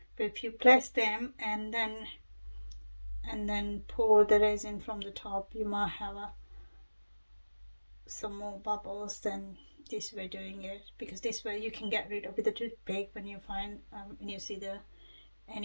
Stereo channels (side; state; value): both; inverted; correlation -1.00